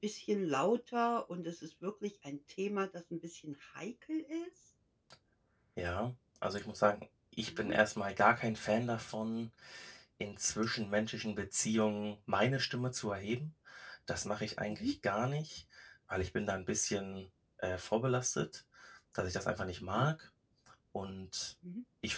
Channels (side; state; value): both; identical; correlation 1.00